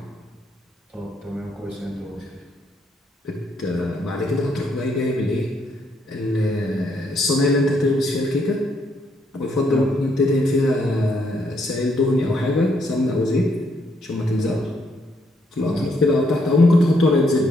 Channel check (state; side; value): normal; both; correlation 0.73